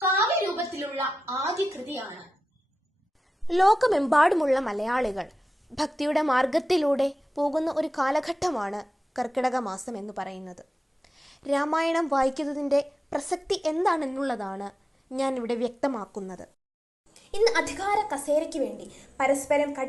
കാവ്യരൂപത്തിലുള്ള ആദ്യ കൃതിയാണ്. ലോകമെമ്പാടുമുള്ള മലയാളികൾ ഭക്തിയുടെ മാർഗത്തിലൂടെ പോകുന്ന ഒരു കാലഘട്ടമാണ് കർക്കിടക മാസം എന്ന് പറയുന്നത്. രാമായണം വായിക്കുന്നതിൻ്റെ പ്രസക്തി എന്താണെന്നുള്ളതാണ് ഞാൻ ഇവിടെ വ്യക്തമാക്കുന്നത്. ഇന്ന് അധികാര കസേരയ്ക്ക് വേണ്ടി പരസ്പരം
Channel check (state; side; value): normal; both; correlation 0.93